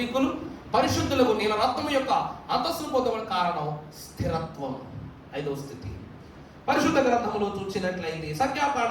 పరిశుద్ధులకు నీల రక్తం యొక్క అంతస్తును పొందడం కారణం స్థిరత్వం. 5వ స్థితి పరిశుద్ధ గ్రంథములో చూసినట్లయితే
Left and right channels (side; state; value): both; identical; correlation 1.00